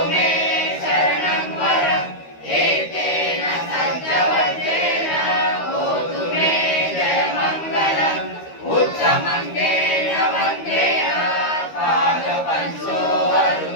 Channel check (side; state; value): right; late; 13 ms